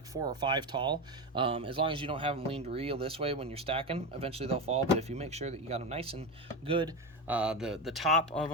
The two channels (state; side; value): normal; both; correlation 0.16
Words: 4 or 5 tall. As long as you don't have them leaned real this way when you're stacking, eventually they'll fall. But if you make sure that you got them nice and good, the top of